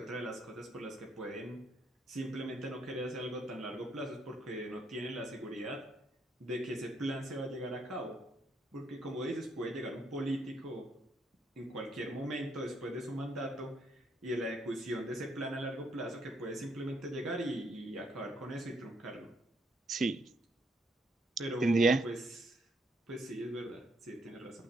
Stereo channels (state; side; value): normal; both; correlation 0.72